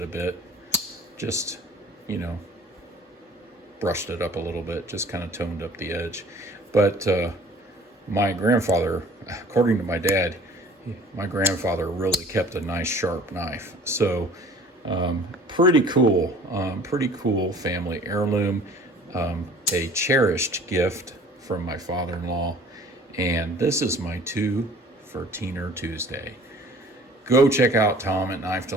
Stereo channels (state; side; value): normal; both; correlation 0.49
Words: a bit, just, brushed it up a little bit, just kind of toned up the edge. But my grandfather, according to my dad, my grandfather really kept a nice sharp knife. So pretty cool family heirloom, a cherished gift from my father-in-law. And this is my 2 for Teener Tuesday. Go check out Tom at Knife